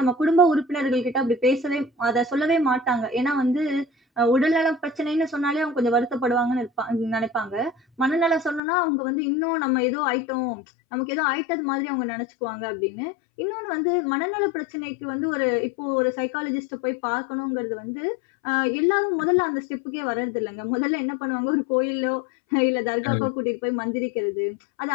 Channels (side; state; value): right; drops out; at 8.6 s